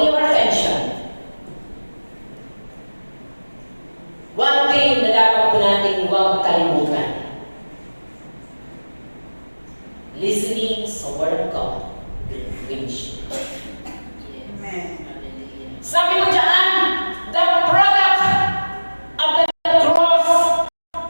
your attention. One thing na dapat po natin huwag kalimutan. Listening sa Word of God. Which Amen. sabi mo dyan, the product of the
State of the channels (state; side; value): inverted; both; correlation -1.00